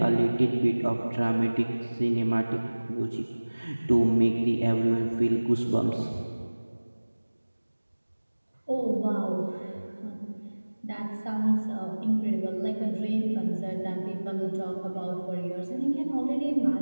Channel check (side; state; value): both; inverted; correlation -1.00